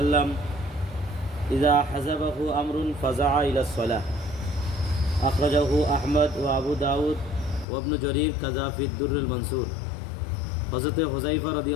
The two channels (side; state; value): right; drops out; at 7.7 s